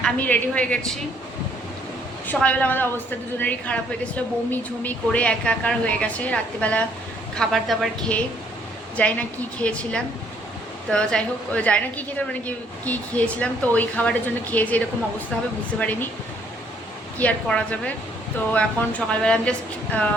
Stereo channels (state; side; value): normal; both; correlation 0.65